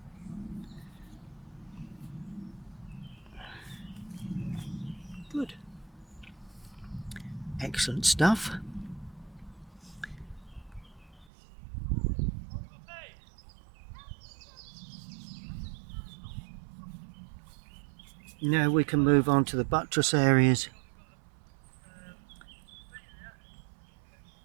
Good. Excellent stuff. Now we can move on to the buttress areas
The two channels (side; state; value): left; drops out; at 11.2 s